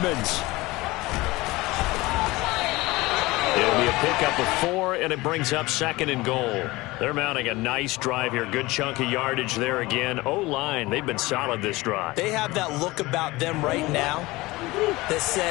It'll be a pickup of 4, and it brings up 2nd and goal. They're mounting a nice drive here. Good chunk of yardage there again. O-line, they've been solid this drive. They have that look about them right now that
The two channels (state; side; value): quieter; right; 20.7 dB